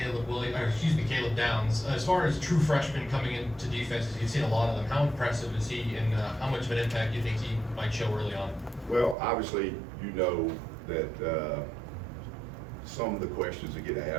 Downs. As far as true freshmen coming into defenses, you've seen a lot of them. How impressive is he, and how much of an impact do you think he might show early on? Well, obviously, you know that some of the questions that get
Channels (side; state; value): left; drops out; at 9.2 s